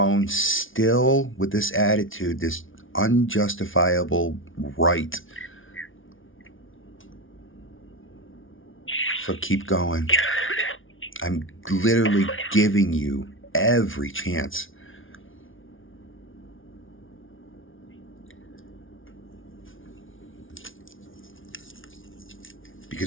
still with this attitude, this unjustifiable right. So keep going. I'm literally giving you every chance.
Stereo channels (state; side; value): late; right; 0.57 ms